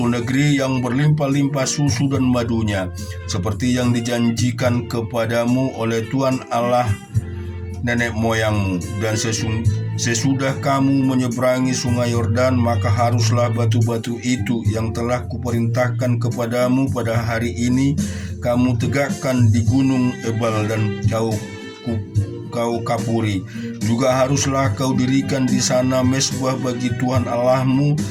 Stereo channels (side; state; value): both; identical; correlation 1.00